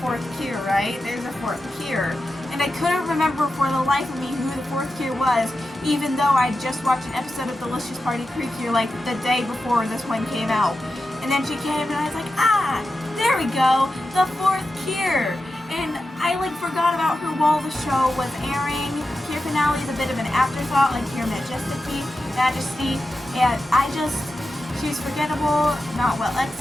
fourth Cure, right? There's a fourth Cure. And I couldn't remember for the life of me who the fourth Cure was, even though I just watched an episode of Delicious Party Precure, like, the day before this one came out. And then she came, and I was like, there we go, the fourth Cure. And I like forgot about her while the show was airing. Cure Finale is a bit of an afterthought, like Cure Majesty, and she's forgettable, not well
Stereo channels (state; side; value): normal; both; correlation 0.91